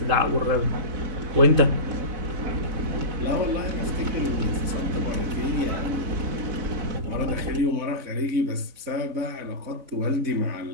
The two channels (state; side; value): late; left; 4.0 ms